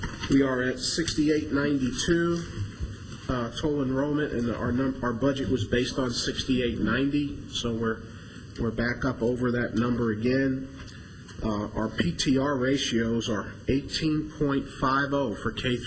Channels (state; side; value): identical; both; correlation 1.00